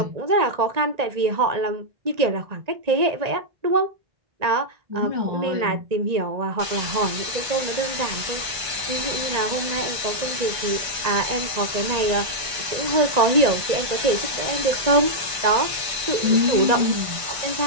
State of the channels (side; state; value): left; late; 1.9 ms